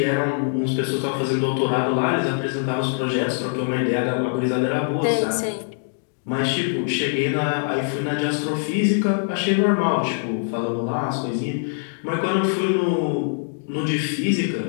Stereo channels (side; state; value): right; silent; digital silence